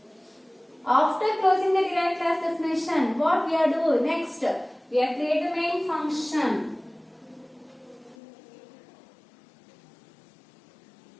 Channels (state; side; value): drops out; right; at 8.2 s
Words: After closing the derived class definition, what we are doing next? We are creating the main function.